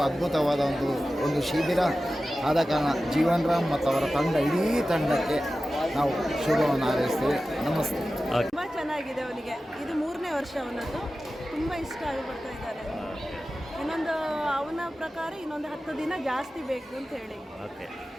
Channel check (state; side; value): normal; both; correlation 0.94